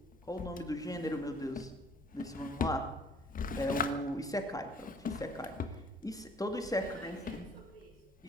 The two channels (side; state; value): both; normal; correlation 0.56